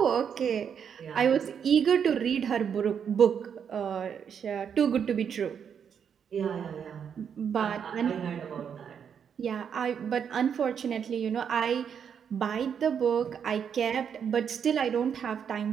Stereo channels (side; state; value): left; quieter; 7.6 dB